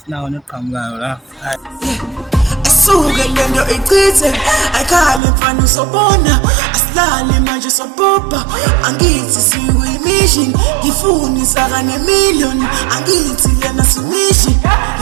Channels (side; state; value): left; drops out; at 5.2 s